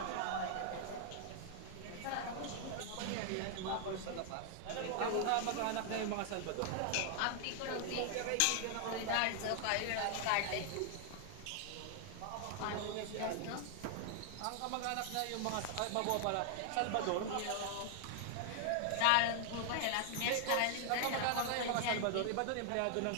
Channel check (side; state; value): both; different; correlation 0.00